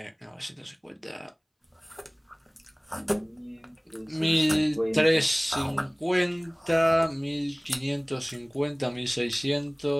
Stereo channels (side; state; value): both; identical; correlation 1.00